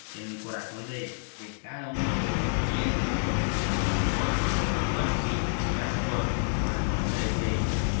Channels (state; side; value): silent; right; 59 dB below the other